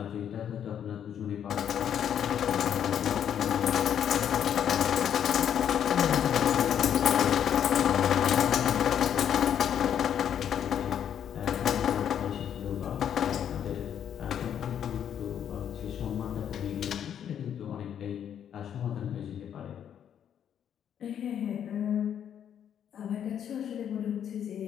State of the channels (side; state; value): right; quieter; 9.2 dB